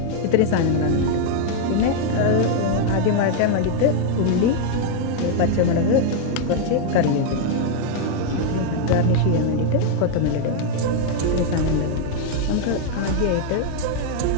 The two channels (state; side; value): different; both; correlation 0.00